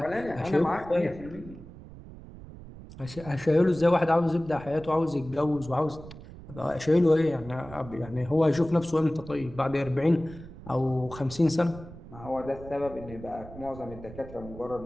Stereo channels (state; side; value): noise; right; rumble, 16 dB below the sound